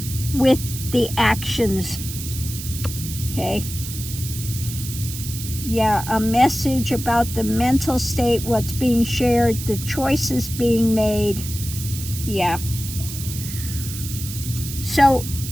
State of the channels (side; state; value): right; noise; hiss, 9 dB below the sound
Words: with the actions. Okay? Yeah, a message about the mental state, what's being shared, the choices being made. Yeah. So